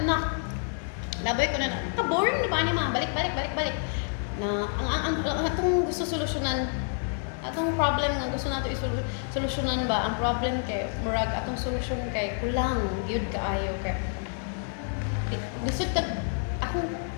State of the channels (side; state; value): right; silent; 56 dB below the other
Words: anak. Labay ko na, ka-boring na ba ni mama? Balik. Na, ang atong gusto solusyonan, atong problem nga gusto nato solusyonan ba? Ang problem kay, murag atong solusyon kay, kulang, yun kaayo kay. Gusto